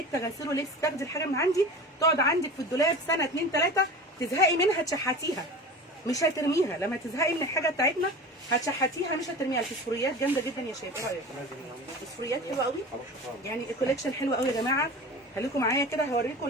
غسيل ولبس تاخدي الحاجه من عندي تقعد عندك في الدولاب سنه 2 3 تزهقي منها تشحتيها، مش هترميها. لما تزهقي من الحاجه بتاعتنا هتشحتيها مش هترميها. الفسفوريات جامده جدا يا شباب، ايه رايك؟ الفسفوريات حلوه قوي يعني، الكوليكشن حلو قوي يا جماعه. خليكم معايا كده هوريكم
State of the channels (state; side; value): normal; both; correlation 0.34